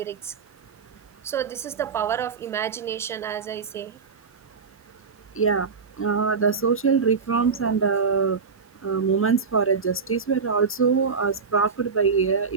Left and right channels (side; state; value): left; quieter; 5.4 dB